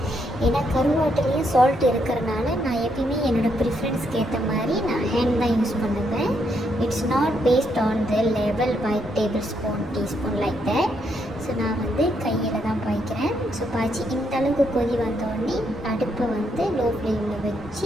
ஏன்னா கருவாட்டிலையும் சால்ட் இருக்கிறனால நான் எப்பயுமே என்னோடய ப்ரிஃபரன்ஸ்க்கு ஏற்ற மாதிரி நான் ஹேண்ட் தான் யூஸ் பண்ணுவேன். It's not based on the level by tablespoon teaspoon like that. So நான் வந்து கையில் தான் பாய்க்கிறேன். ஸோ பாய்ச்சி இந்த அளவுக்கு கொதி வந்தோடனே அடுப்பை வந்து லோ ஃப்ளேமில்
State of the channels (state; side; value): normal; both; correlation 0.76